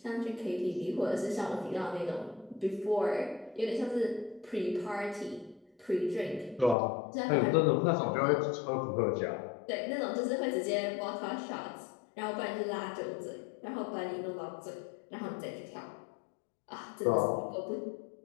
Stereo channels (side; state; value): right; drops out; at 6.8 s